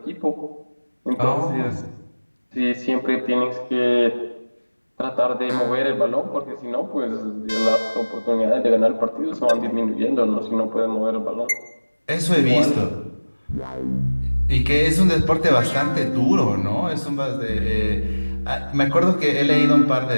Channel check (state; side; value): inverted; both; correlation -1.00